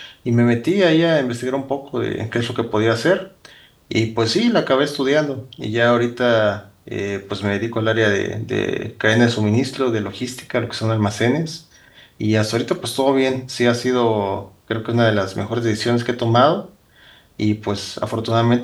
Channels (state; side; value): identical; both; correlation 1.00